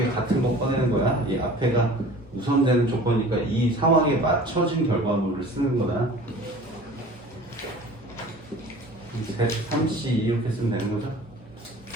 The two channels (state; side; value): normal; both; correlation 0.44